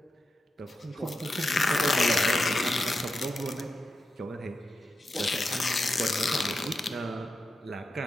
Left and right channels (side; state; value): both; normal; correlation 0.88